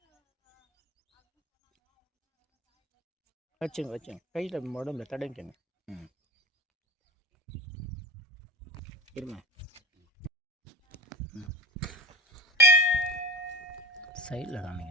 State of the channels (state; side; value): normal; both; correlation 0.33